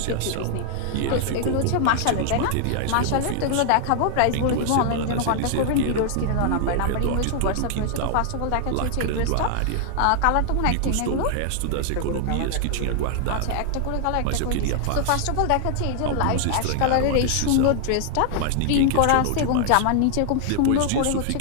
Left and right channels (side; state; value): both; different; correlation 0.00